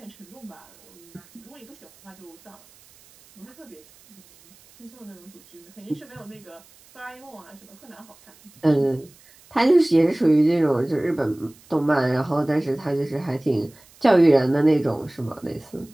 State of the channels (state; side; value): noise; right; hiss, 26 dB below the sound